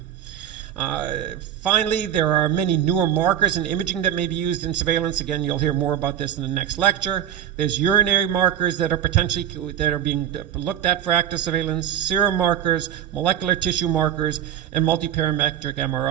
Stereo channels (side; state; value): left; quieter; 10.2 dB